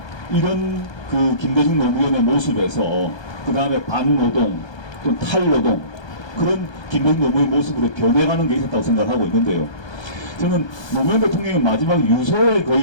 이런 그 김대중, 노무현의 모습에서 그 다음에 반노동 또 탈노동, 그런 김대중, 노무현 모습으로 변해가는 게 있었다고 생각하고 있는데요. 저는 노무현 대통령의 마지막 유서에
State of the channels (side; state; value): right; late; 1.2 ms